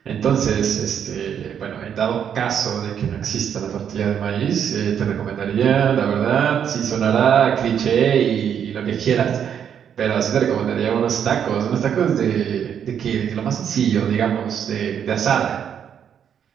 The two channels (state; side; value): quieter; left; 8.5 dB